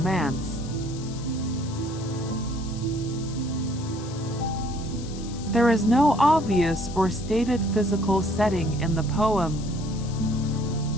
There is no obvious or stated physical setting in the poem.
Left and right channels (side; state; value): left; noise; hiss, 17 dB below the sound